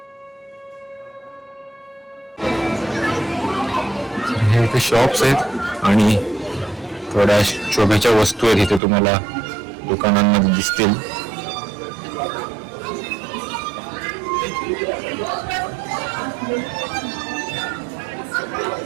हे इथे शॉप्स आहेत आणि थोड्या शोभेच्या वस्तू आहेत इथे तुम्हाला दुकानांमध्ये दिसतील.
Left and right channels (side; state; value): left; drops out; at 8.8 s